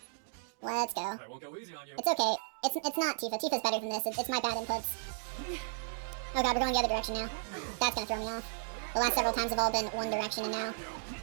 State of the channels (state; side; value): silent; left; digital silence